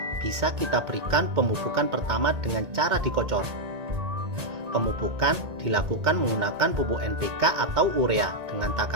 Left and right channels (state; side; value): late; left; 2.2 ms